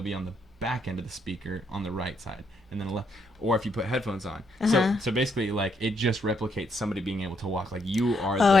be on the back end of the speaker on the right side. and then a left. Or if you put headphones on. So basically, like, it just replicates somebody being able to walk. Like, you are the microphone. Oh,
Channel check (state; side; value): normal; both; correlation 0.75